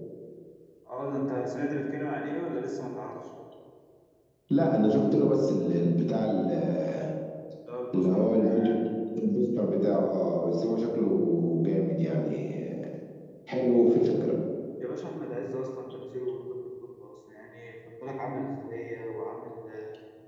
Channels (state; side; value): identical; both; correlation 1.00